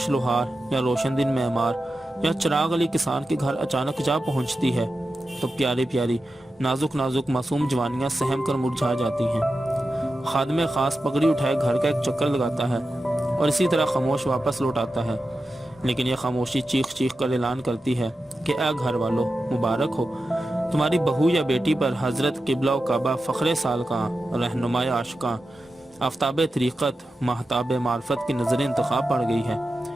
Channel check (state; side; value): normal; both; correlation 0.91